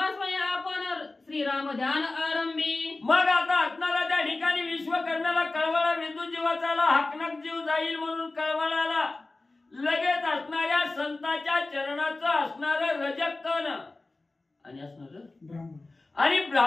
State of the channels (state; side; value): quieter; right; 3.2 dB